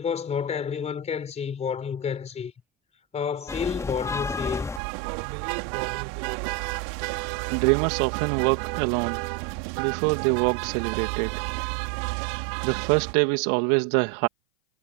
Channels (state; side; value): drops out; left; at 4.8 s